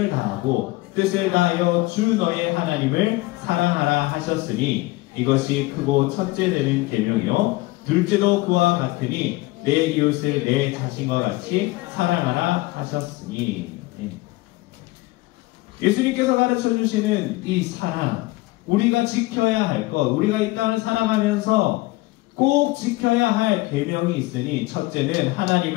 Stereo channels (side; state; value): right; quieter; 20.5 dB